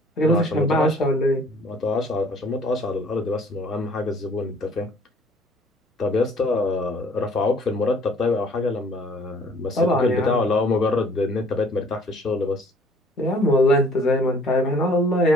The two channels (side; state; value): both; normal; correlation 0.56